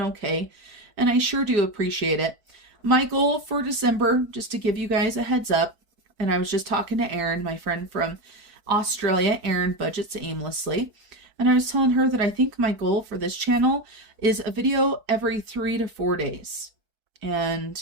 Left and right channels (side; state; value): left; late; 5.0 ms